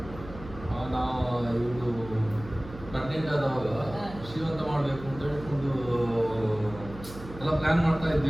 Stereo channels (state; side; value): noise; right; hum, 14 dB below the sound